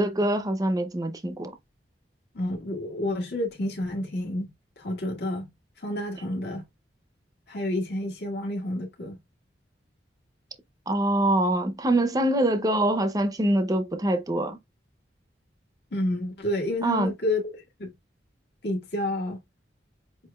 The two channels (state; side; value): normal; both; correlation 0.62